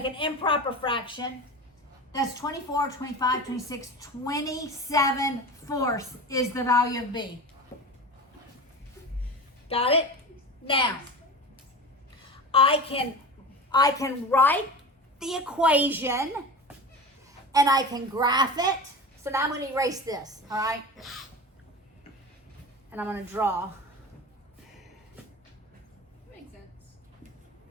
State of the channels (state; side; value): normal; both; correlation 0.30